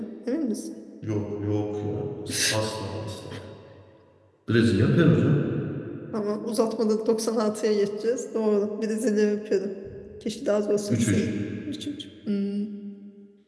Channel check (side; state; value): both; identical; correlation 1.00